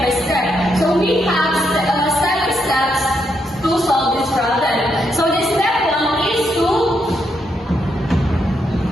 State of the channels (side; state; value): both; normal; correlation 0.79